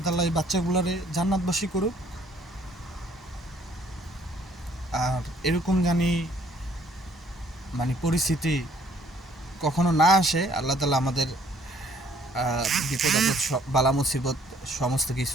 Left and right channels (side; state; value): both; normal; correlation 0.62